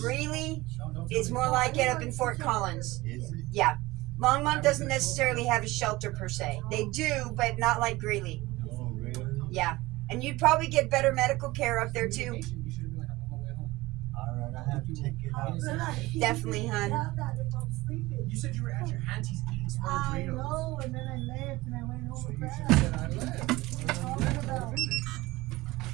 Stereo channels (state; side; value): quieter; left; 19.9 dB